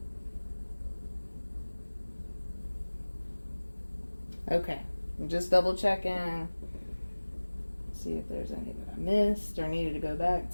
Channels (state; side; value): inverted; both; correlation -1.00